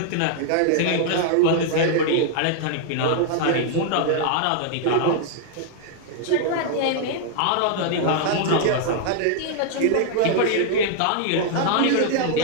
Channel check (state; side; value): different; both; correlation 0.00